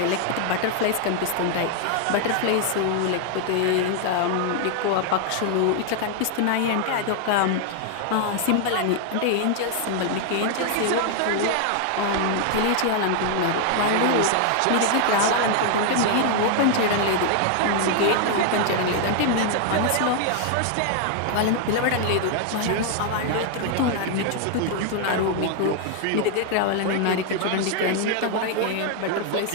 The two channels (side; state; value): both; different; correlation 0.00